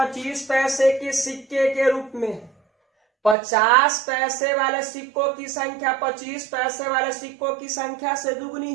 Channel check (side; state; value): left; drops out; at 3.4 s